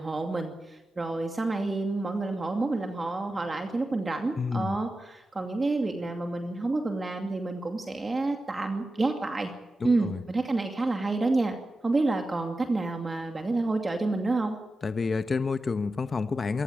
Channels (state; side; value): normal; both; correlation 0.92